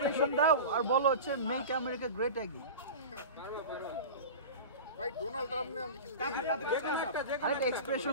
দাও আর বলো হচ্ছে মেক আমেরিকা গ্রেট অ্যাগেইন। ভাই ডোনাল্ড ট্রাম্প নিয়ে আমি কিছু আরে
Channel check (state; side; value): inverted; both; correlation -0.31